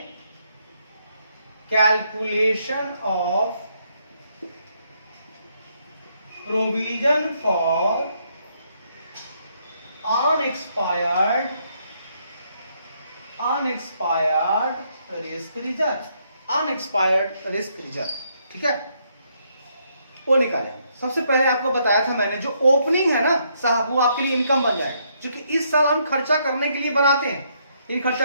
calculation of provision for unexpired risk reserve, unexpired risk reserve, ठीक है, वो निकालेंगे। सबसे पहले आपको बताया था मैंने, जो ओपनिंग है ना साहब, वो आपके लिए इनकम बन जाएगा, क्योंकि इस साल हम खर्चा करने के लिए बनाते हैं, लेकिन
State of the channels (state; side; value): inverted; both; correlation -0.73